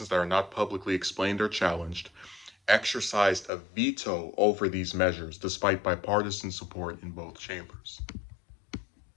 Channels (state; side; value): drops out; right; at 3.5 s